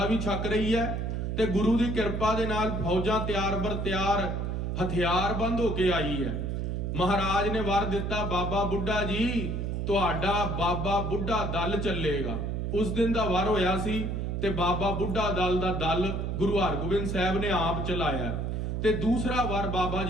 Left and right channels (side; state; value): right; noise; hum, 2 dB below the sound